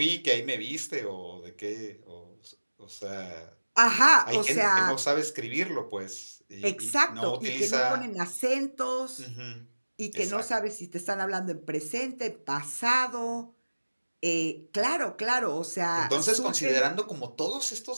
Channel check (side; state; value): both; inverted; correlation -1.00